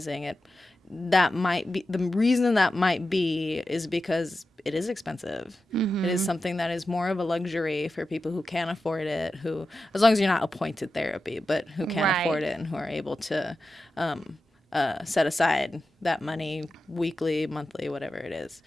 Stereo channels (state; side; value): normal; both; correlation 0.92